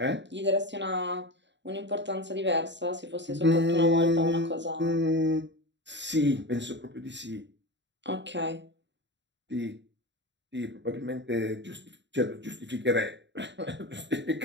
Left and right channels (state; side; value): late; left; 0.52 ms